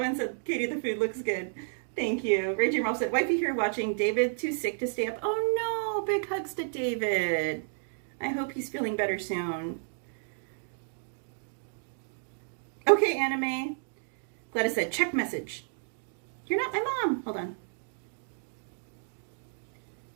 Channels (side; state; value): left; silent; digital silence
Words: said, "Katie, the food looks good." Thank you. Raging Ralph said, "Wifey here watching. David too sick to stay up." Oh no, big hugs to David. I hope he's feeling better soon. Okay, Anime. Gladys said, "Check message." You're not my mom. Hold on.